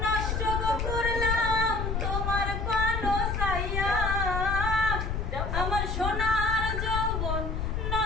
নষ্ট করলাম তোমার পানো সাইয়া, আমার সোনার যৌবন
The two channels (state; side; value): noise; left; rumble, 1 dB below the sound